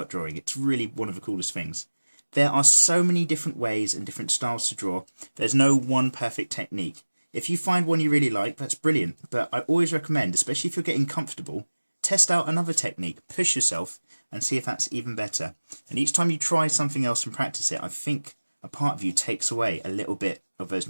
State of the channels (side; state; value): both; inverted; correlation -1.00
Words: drawing. It's really one of the coolest things. There are so many different ways and different styles to draw. There's no one perfect technique. If you find one you really like, that's brilliant. But I always recommend, especially if you're getting comfortable, test out another technique, push yourself, and see if that's even better. And each time you try something else and practice it, I think a part of you takes away a little bit of those